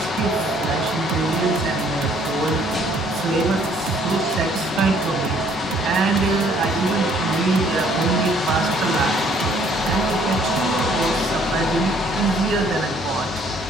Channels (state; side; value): normal; both; correlation 0.62